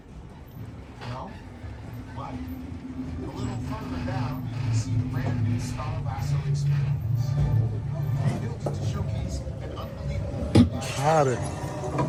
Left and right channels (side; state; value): both; identical; correlation 1.00